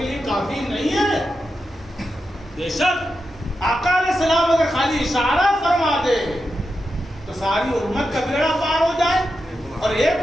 لیے کافی نہیں ہے؟ بے شک آقا علیہ السلام اگر خالی اشارہ فرما دے تو ساری امت کا بیڑا پار ہو جائے، اور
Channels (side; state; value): both; normal; correlation 0.88